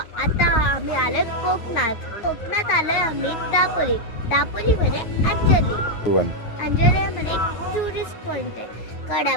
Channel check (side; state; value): right; late; 9.3 ms